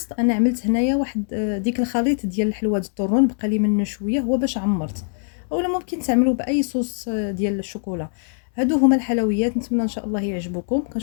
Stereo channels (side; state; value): right; silent; digital silence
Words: انا عملت هنايا واحد ديك الخليط ديال الحلوى الطرون، بقى لي منه شويه، هو باش عمرت. اولا ممكن تعملوا باي صوص ديال الشوكولا. هادو هما الحلويات، نتمنى ان شاء الله يعجبوكم.